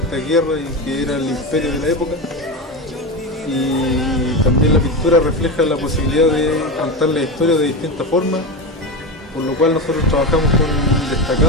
guerras y que era el imperio de la época. Y también la pintura refleja la posibilidad de contar la historia de distintas formas, por lo cual nosotros trabajamos con un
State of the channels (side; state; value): both; normal; correlation 0.19